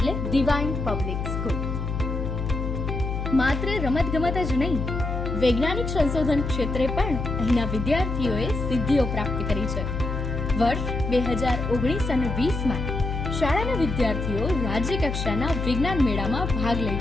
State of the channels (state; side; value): noise; left; hum, 4 dB below the sound